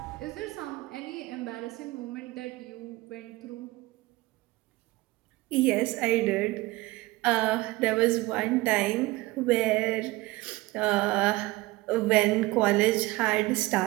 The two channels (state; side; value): quieter; left; 20.1 dB